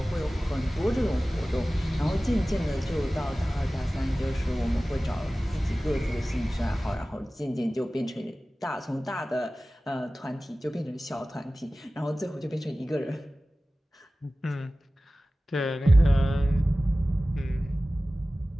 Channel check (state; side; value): normal; both; correlation 0.97